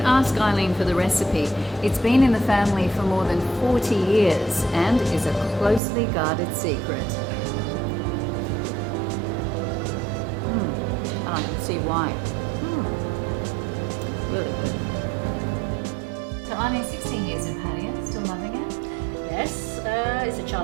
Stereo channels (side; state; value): left; drops out; at 5.8 s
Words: ask Eileen for the recipe. It's been in the family for more than 40 years and is a closely guarded secret. I can see why. Really good. So Eileen, 16 years in Pattaya, still loving it? Yes, it's a